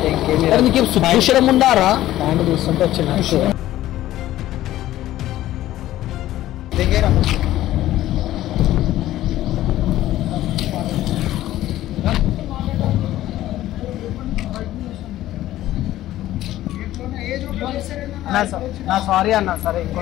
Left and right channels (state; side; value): quieter; right; 14.3 dB